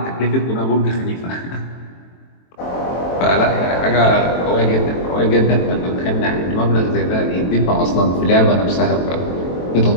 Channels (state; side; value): late; right; 23 ms